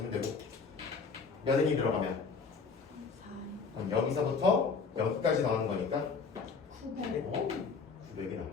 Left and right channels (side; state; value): right; quieter; 5.1 dB